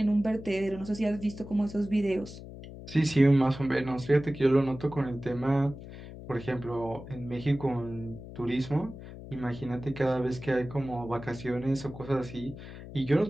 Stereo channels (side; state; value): left; noise; hum, 13 dB below the sound